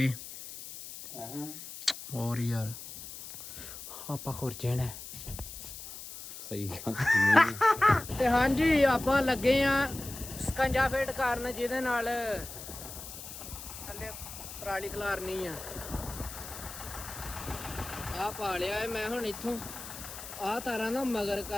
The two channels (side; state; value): left; noise; hiss, 11 dB below the sound